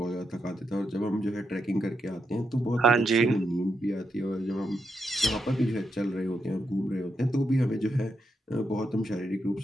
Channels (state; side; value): normal; both; correlation 0.82